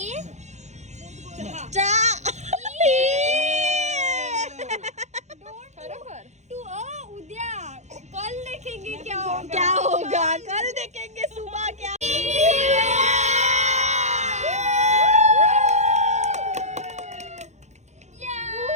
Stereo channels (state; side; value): late; left; 0.33 ms